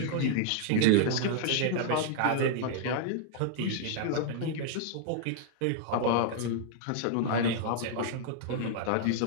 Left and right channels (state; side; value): different; both; correlation -0.01